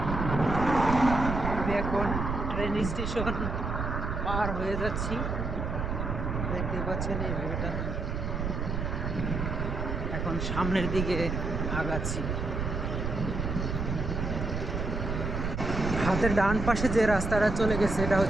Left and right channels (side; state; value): right; noise; rumble, 2 dB below the sound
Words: আমি এখন ট্রেন স্টেশন পার হয়ে যাচ্ছি, দেখতে পাচ্ছেন এই ভিউটা। এখন সামনের দিকে আগাচ্ছি। হাতের ডান পাশে যে রাস্তাটা চলে গেছে এটা